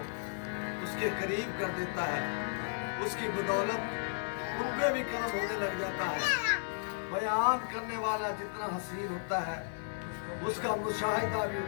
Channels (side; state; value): right; silent; digital silence